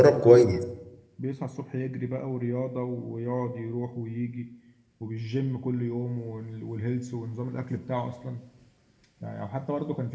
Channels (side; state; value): both; identical; correlation 1.00